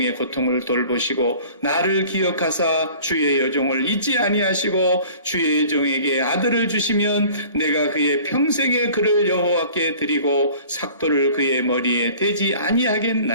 고통을 돌보시고 나를 기억하사 주의 여종을 잊지 아니하시고 주의 여종에게 아들을 주시면 내가 그의 평생의 그를 여호와께 드리고 삭도를 그의 머리에 대지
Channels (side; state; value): both; inverted; correlation -0.47